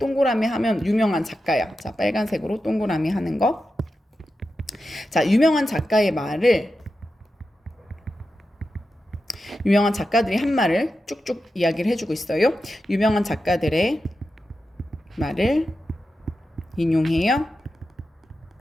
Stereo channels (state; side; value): normal; both; correlation 0.90